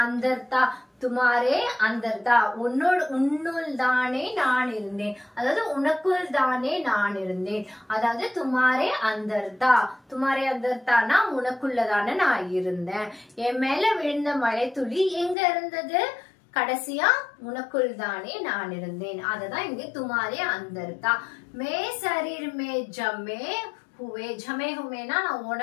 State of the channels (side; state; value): right; drops out; at 15.4 s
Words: अंदर था. துமாரே அந்தர்தா, உன்னுள் தானே நான் இருந்தேன், அதாவது உனக்குள் தானே நான் இருந்தேன். அதாவது துமாரே அந்தர்தானா உனக்குள்ளதானே நான் இருந்தேன். என் மேல விழுந்த மழை துளி எங்க இருந்தது? கடைசியா உனக்குள் தானே நான் இருந்தேன். அததான் இங்க துமாரே அந்தர்தா. மே शरीर में ஜமே ஹுமேனா நான்